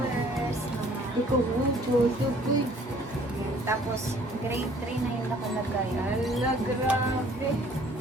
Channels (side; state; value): both; normal; correlation 0.57